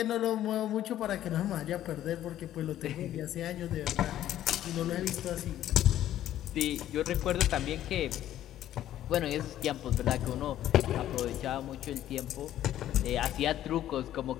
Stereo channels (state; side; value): quieter; right; 12.4 dB